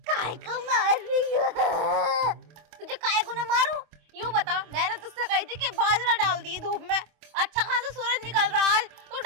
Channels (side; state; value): left; late; 25 ms